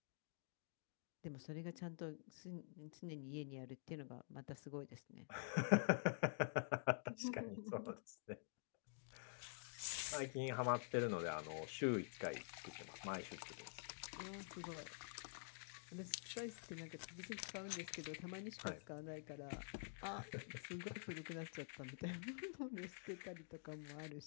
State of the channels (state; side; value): silent; right; digital silence